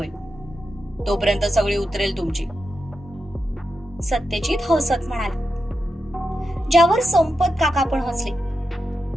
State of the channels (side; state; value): both; normal; correlation 0.88